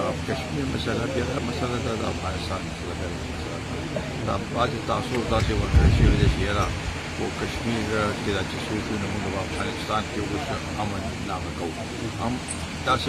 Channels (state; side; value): identical; both; correlation 1.00